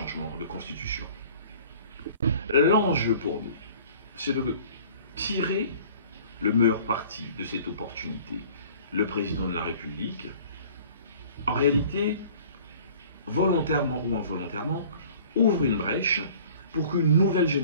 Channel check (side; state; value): both; inverted; correlation -0.49